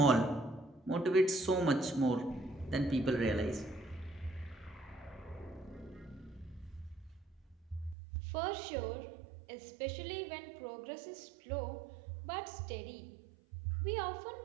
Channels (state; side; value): drops out; left; at 8.0 s